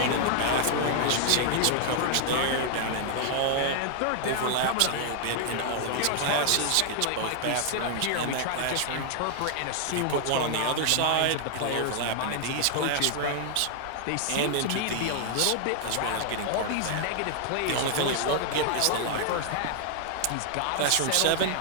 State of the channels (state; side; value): different; both; correlation 0.00